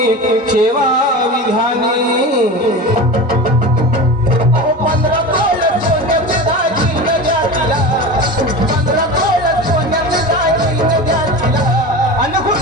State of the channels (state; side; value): normal; both; correlation 0.29